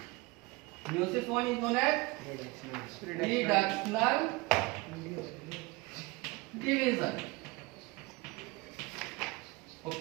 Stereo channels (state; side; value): quieter; left; 23.4 dB